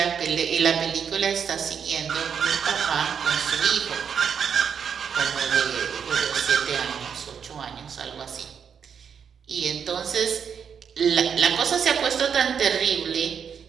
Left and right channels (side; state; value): left; quieter; 7.2 dB